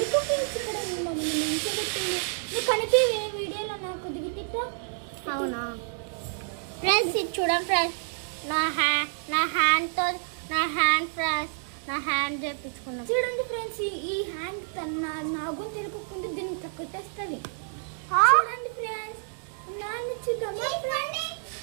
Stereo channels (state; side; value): silent; left; 59 dB below the other